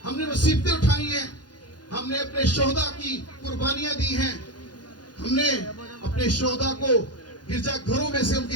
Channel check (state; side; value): late; right; 0.70 ms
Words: ہم نے مصیبتیں اٹھائی ہیں ہم نے اپنے شہداء کی قربانیاں دی ہیں ہم نے اپنے شہداء کو گرجا گھروں میں سے ان کی